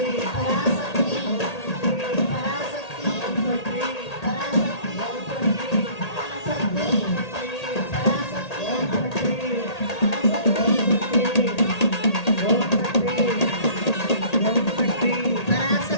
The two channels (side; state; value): right; late; 1.8 ms